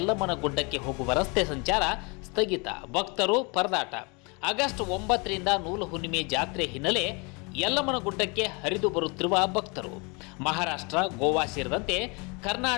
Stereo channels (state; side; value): quieter; right; 30.3 dB